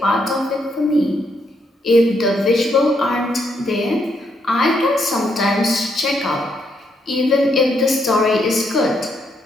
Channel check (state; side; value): normal; both; correlation 0.76